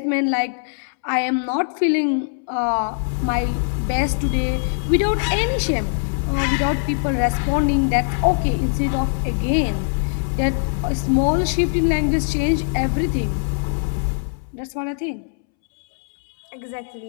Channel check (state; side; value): silent; right; 65 dB below the other